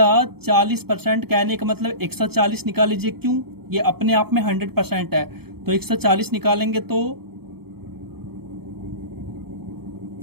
40% कहने का मतलब 140 निकाल लीजिए। क्यों? ये अपने आप में 100% है। तो 140 निकालेंगे तो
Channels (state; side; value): late; left; 0.96 ms